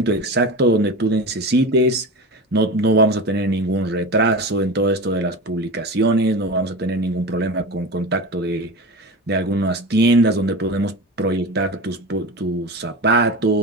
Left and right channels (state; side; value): normal; both; correlation 0.28